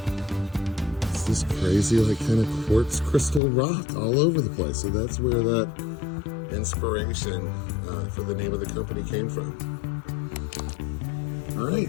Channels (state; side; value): drops out; right; at 3.4 s